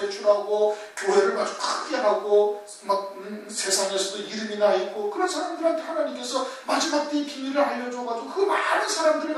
교회를 아주 크게 하고 막 세상에서도 이름이 나 있고 그런 사람들한테 하나님께서 마지막 때의 비밀을 알려줘가지고 그 많은 사람들을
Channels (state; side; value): identical; both; correlation 1.00